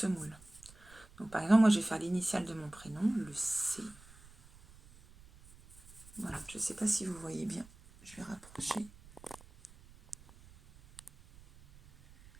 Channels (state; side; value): noise; right; rumble, 22 dB below the sound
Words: Donc par exemple, moi je vais faire l'initiale de mon prénom, le C. Voilà, je ne sais pas si vous voyez bien. Je vais rapprocher